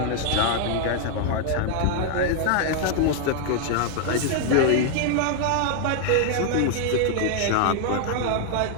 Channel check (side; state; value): both; different; correlation 0.00